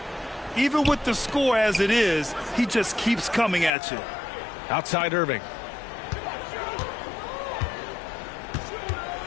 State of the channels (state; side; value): drops out; right; at 3.7 s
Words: Even with the score as it is, he just keeps coming at you. Outside Irving.